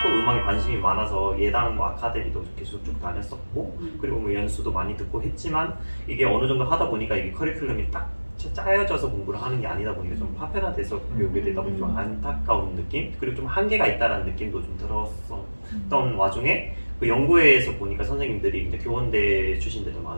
또 음악에 관심이 많아서 예당 아카데미도 계속 쭉 다녔었고, 그리고 뭐 연수도 많이 듣고 했지만 이게 어느 정도 하다 보니까 이게 커리큘럼이 딱 짜여져서 공부를 하는 게 아니다 보니까 좀 파편화돼서 배우게 되다 보니 좀 안타까운 느낌, 그리고 좀 한계가 있다는 느낌도 좀 들었었던 와중에 그 연구회에서 보니까 선생님들이 이제 교원대 출신들도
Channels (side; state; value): both; inverted; correlation -1.00